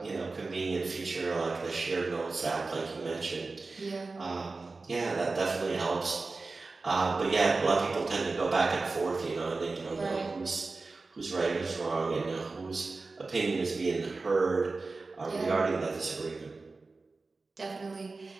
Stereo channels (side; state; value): left; quieter; 3.8 dB